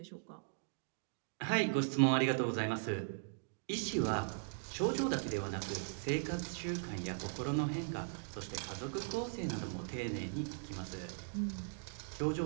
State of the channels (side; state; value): left; silent; digital silence